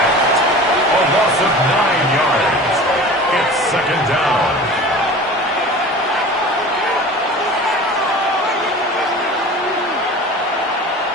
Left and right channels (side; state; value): both; normal; correlation 0.38